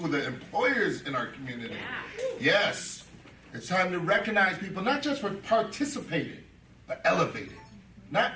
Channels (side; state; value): both; identical; correlation 1.00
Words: the employers in our community. Yeah. Yes, it's time to recognize people not just for participating, but elevating.